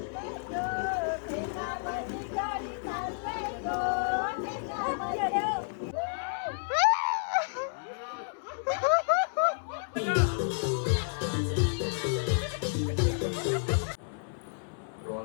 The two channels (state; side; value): silent; right; 57 dB below the other